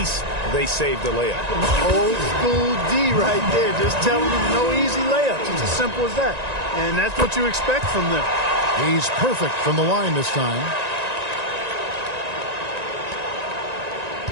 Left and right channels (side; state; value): left; late; 1.9 ms